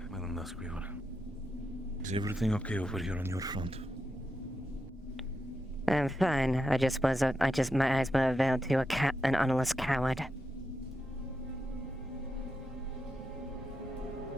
Madam Duskweaver. Is everything okay over here on your front? I'm fine. My eyes were veiled to an honest coward.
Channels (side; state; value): both; normal; correlation 0.86